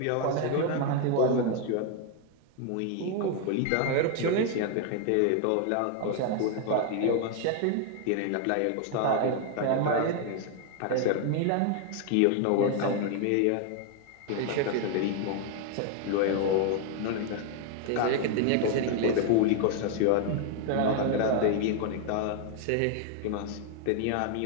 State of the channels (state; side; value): different; both; correlation 0.00